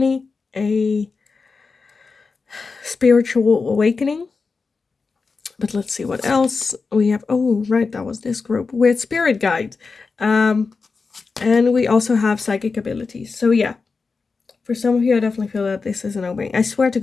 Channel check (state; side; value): quieter; right; 4.5 dB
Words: a spiritual awakening. But let's see what else we have. Oh, right, that was this group with spirit guides. And we also have psychic abilities. So yeah, for some of you, I definitely feel that this is an opening. I swear to